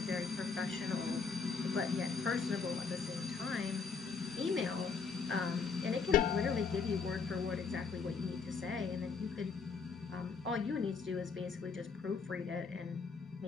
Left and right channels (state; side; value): quieter; right; 5.2 dB